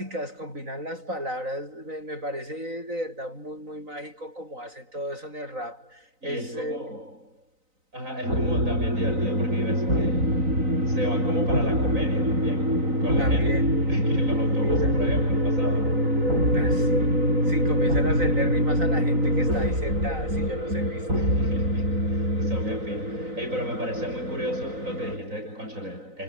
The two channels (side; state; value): left; late; 3.9 ms